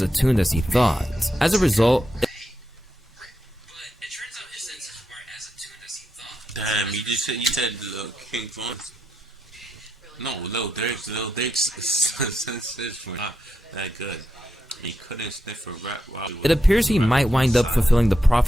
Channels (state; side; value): normal; both; correlation 0.84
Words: attuned as he thought. As a result, damn, you said King Von's. No, Lil Durk's senses were not that good. He couldn't sniff a rat while he was. It appears he might wind up fulfilling the